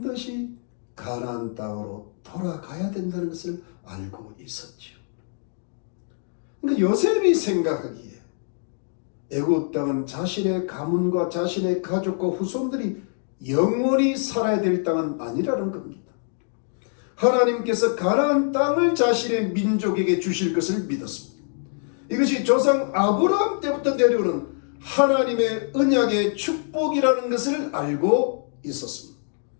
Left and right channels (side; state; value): right; silent; 60 dB below the other